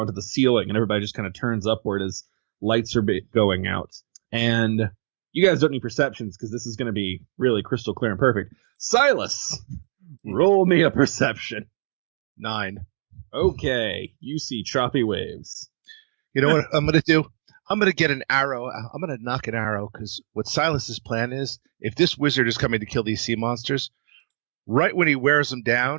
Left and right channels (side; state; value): left; silent; digital silence